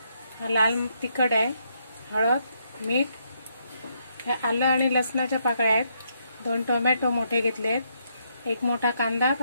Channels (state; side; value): inverted; both; correlation -0.75